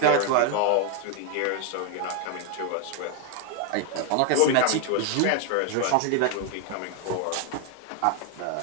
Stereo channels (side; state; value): both; different; correlation 0.01